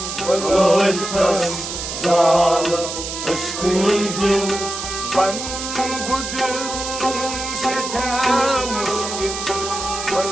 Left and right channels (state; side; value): noise; right; hiss, 6 dB below the sound